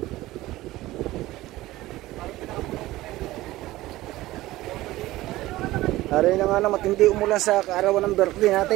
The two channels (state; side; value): quieter; left; 17.2 dB